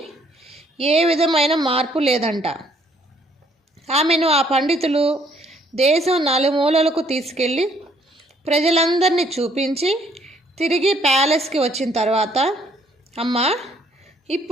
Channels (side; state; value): both; normal; correlation 0.65